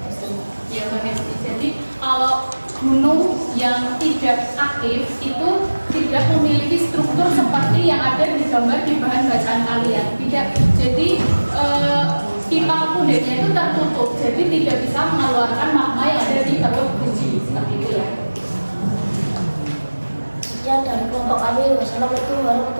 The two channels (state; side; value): inverted; both; correlation -1.00